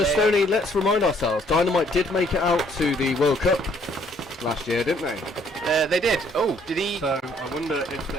Stoney, let's remind ourselves, Dynamite did make it out to the World Cup last year, didn't they? They did. Oh, did he? So I wonder if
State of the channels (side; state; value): both; normal; correlation 0.64